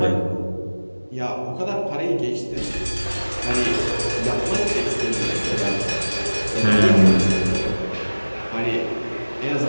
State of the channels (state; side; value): inverted; both; correlation -1.00